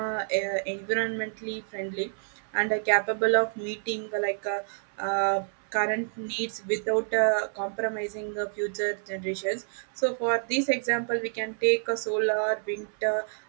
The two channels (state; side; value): silent; left; 59 dB below the other